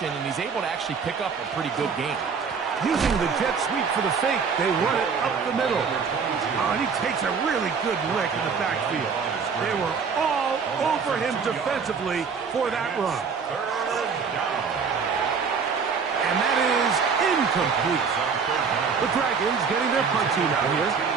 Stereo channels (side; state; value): left; quieter; 5.8 dB